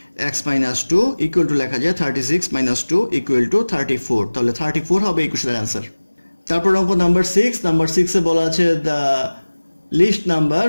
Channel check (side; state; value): both; inverted; correlation -1.00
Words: x minus 2 equal to লেখা যায় 36 minus 2 equal to 34, তাহলে 34 হবে এই কোশ্চেনের অ্যান্সার। তারপর অঙ্ক নাম্বার 6 বলা আছে the least number